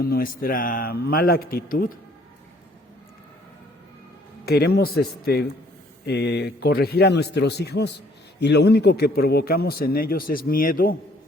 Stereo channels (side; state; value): both; normal; correlation 0.61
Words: nuestra mala actitud, queremos corregir a nuestros hijos, y lo único que provocamos en ellos es miedo